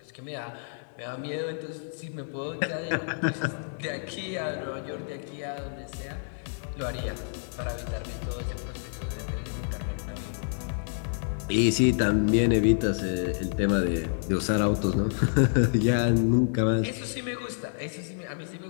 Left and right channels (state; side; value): silent; right; digital silence